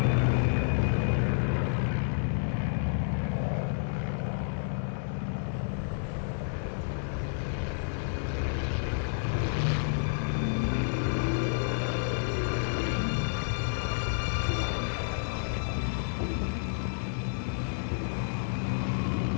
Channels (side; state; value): right; silent; digital silence